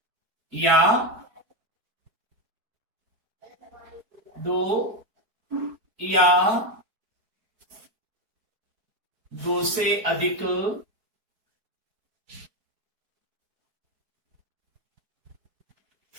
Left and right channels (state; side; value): late; left; 4.6 ms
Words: या दो या दो से अधिक